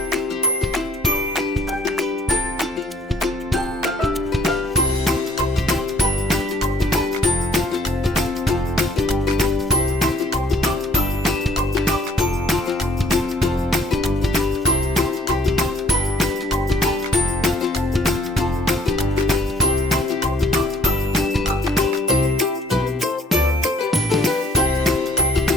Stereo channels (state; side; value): normal; both; correlation 0.59